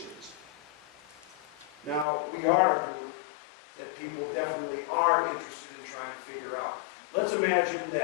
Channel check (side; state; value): right; drops out; at 2.1 s